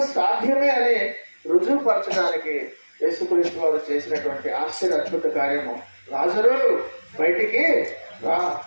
సాధ్యమే అని రుజువుపరచడానికి యేసుక్రీస్తు వారు చేసినటువంటి ఆశ్చర్య అద్భుత కార్యము లాజరు బయటికి రా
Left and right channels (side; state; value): both; inverted; correlation -1.00